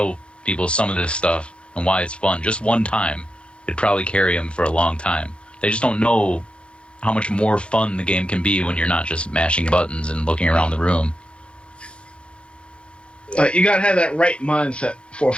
people some of this stuff and why it's fun, just one time, it'd probably carry them for a long time. They just don't know how much more fun the game can be when you're not just mashing buttons and looking around the room. Like, you gotta have that right mindset for a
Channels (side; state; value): right; late; 0.057 ms